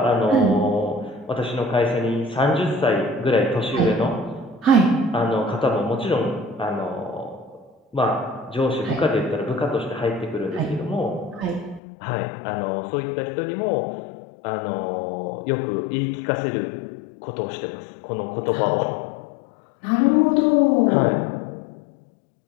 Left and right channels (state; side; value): drops out; right; at 11.8 s